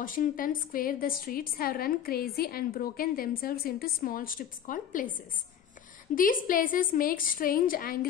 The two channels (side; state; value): right; quieter; 9.1 dB